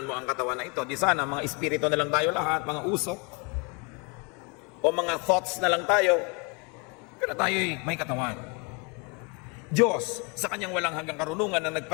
mo ang katawan na ito, di sana mga espiritu na lang tayo lahat, mga usok, o mga thoughts na lang tayo, pero tayo'y may katawan. Diyos, sa kanyang walang hanggang karunungan na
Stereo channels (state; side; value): quieter; right; 32.1 dB